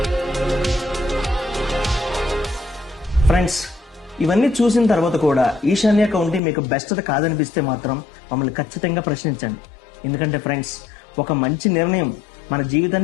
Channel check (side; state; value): right; drops out; at 6.4 s